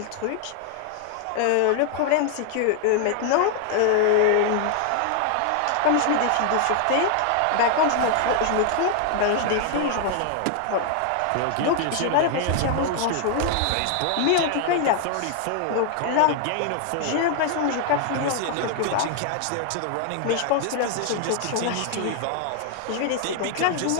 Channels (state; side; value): different; both; correlation 0.00